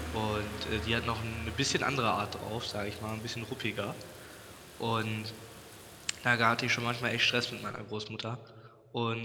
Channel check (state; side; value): identical; both; correlation 1.00